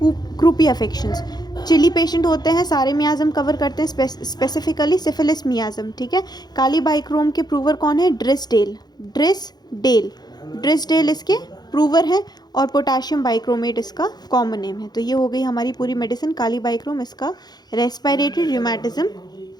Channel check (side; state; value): right; late; 0.20 ms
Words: croupy affections. Chilly patient होते हैं, सारे मियाज़म कवर करते हैं, स्पेसिफिकली सिफिलिस मियाज़म। ठीक है, काली बाइक्रोम के प्रूवर कौन है, ड्रिसडेल इसके प्रूवर है, और पोटाशियम बाइक्रोमेट इसका कॉमन नेम है। तो ये हो गई हमारी पूरी मेडिसिन काली बाइक्रोम, इसका रेस्पिरेटरी, रूमेटिज्म